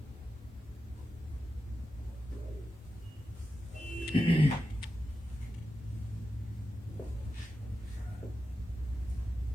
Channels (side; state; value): both; normal; correlation 0.90